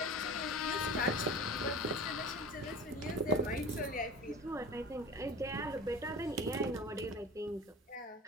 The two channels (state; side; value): normal; both; correlation 0.36